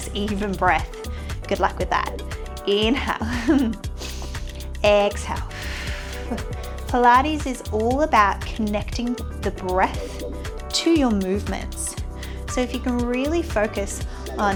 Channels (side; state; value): both; identical; correlation 1.00